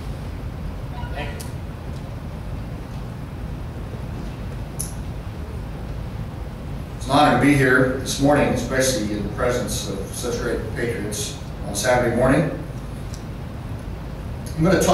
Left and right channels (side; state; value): both; identical; correlation 1.00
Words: It's an honor to be here this morning, especially in the presence of such great patriots on Saturday morning. I'm going to